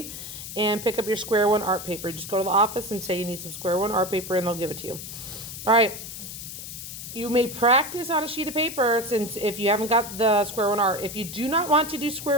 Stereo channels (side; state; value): left; noise; hiss, 10 dB below the sound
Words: and pick up your Square One art paper. Just go to the office and say you need some Square One art paper and they'll give it to you. All right. You may practice on a sheet of paper since if you haven't got the Square One art. If you do not want to do